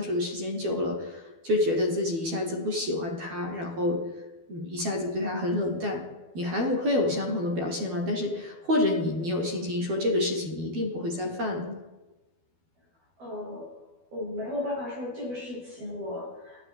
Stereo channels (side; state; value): left; late; 12 ms